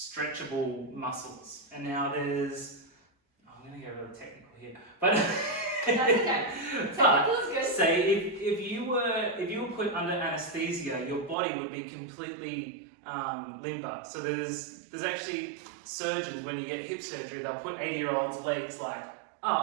muscles. And now there's, I'm going to get really technical here, but That's okay. Technical is good. say if you were put under anesthesia, your body would be completely limber. So there's actually surgeons, when you get hip surgery, they'll put 80-year-olds' legs like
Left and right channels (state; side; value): drops out; left; at 11.4 s